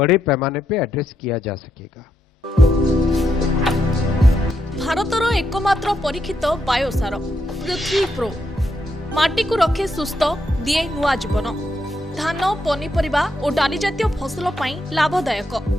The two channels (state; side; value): normal; both; correlation 0.80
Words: पैमाने पे एड्रेस किया जा सकेगा। भारतर एकमात्र परीक्षित बायोसार पृथ्वी प्रो माटी को रखे सुस्थ दिए नुआ जीवन धान पनीपरिबा और डाली जातीय फसल लाभदायक